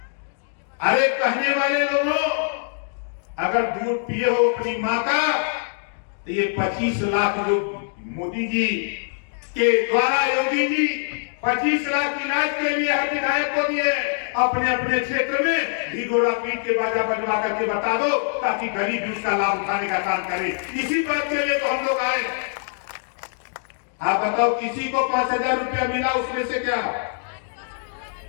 अरे कहने वाले लोगों, अगर दूध पिए हो अपनी माँ का, तो ये 25 लाख जो मोदी जी के द्वारा योगी जी 25 लाख इलाज के लिए हर विधायक को दिए, अपने अपने क्षेत्र में ढिढोरा पीट के बाजा बजवा करके बता दो, ताकि गरीब भी उसका लाभ उठाने का काम करे। इसी बात के लिए तो हम लोग आए। आप बताओ, किसी को 5,000 रुपया मिला उसमें से? क्या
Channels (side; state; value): right; silent; digital silence